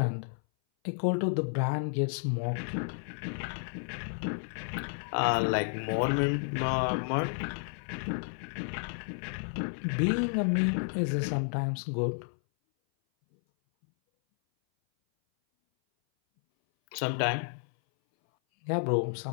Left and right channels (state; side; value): silent; right; 57 dB below the other